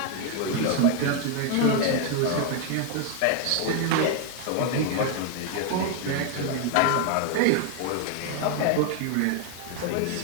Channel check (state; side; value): different; both; correlation 0.01